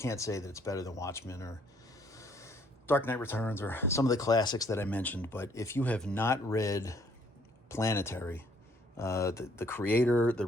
say that it's better than Watchmen or Dark Knight Returns or some of the classics that I mentioned, but if you have not read Planetary, the creator, the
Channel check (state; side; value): normal; both; correlation 0.64